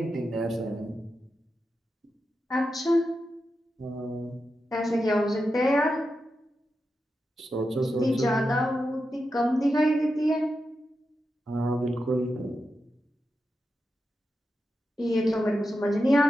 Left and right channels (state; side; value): normal; both; correlation 0.89